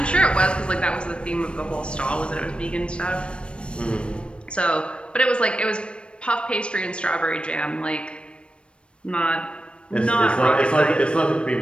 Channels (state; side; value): late; right; 0.058 ms